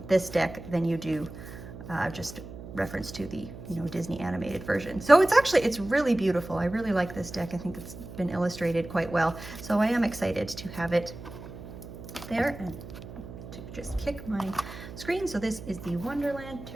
this deck than you do just reference to the Disney animated version. So it's really beautiful. I really like this deck. I think it's been illustrated quite well. So I am excited to have it there and to just kick my screen. So this is the Wonderland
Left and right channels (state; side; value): noise; right; hum, 13 dB below the sound